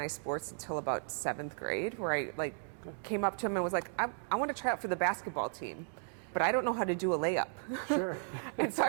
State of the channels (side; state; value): left; silent; 54 dB below the other